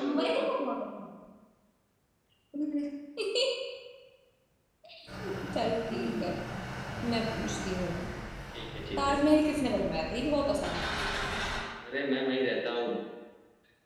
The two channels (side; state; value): both; identical; correlation 1.00